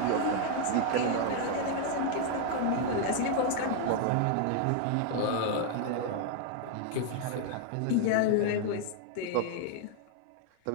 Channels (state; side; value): different; both; correlation 0.00